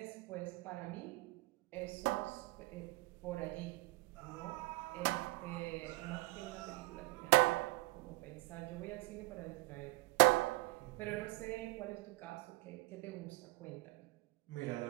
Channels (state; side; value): quieter; left; 23.9 dB